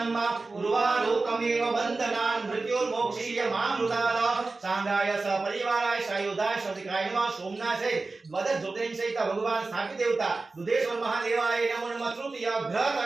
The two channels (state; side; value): quieter; left; 3.6 dB